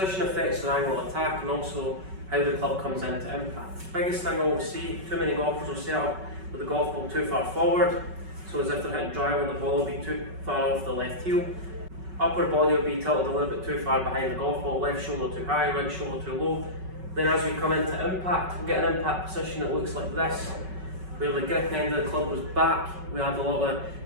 affects the angle of attack and also how the club comes into impact. The biggest thing I always see, too many golfers will set up with the golf ball too far forward, so as if they're hitting driver, the ball will be too far off the left heel. Upper body will be tilted a little bit too far behind the golf ball, left shoulder too high, right shoulder too low. Then as we come into impact, we get an impact position that looks like this, where the grip end of the club was back, we had a lot of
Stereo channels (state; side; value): late; left; 5.4 ms